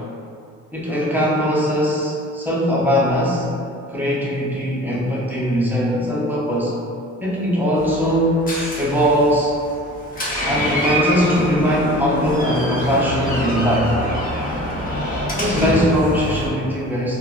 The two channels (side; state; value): both; normal; correlation 0.43